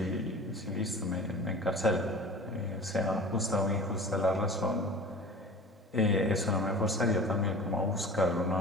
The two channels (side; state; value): both; normal; correlation 0.39